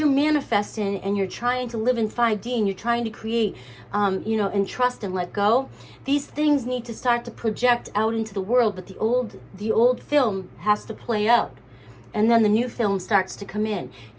manifesting and you're trying to live in 5D and you're trying to create, you know, and trust and let go, these things need to start to project out into the world, but the old film has to play out. And then the new film starts to come in.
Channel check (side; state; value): both; identical; correlation 1.00